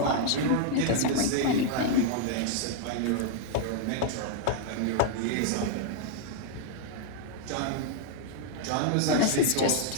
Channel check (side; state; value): both; different; correlation 0.00